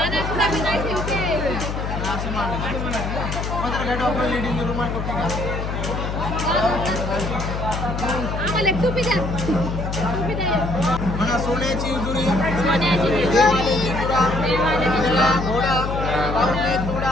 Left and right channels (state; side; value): noise; left; hum, 4 dB below the sound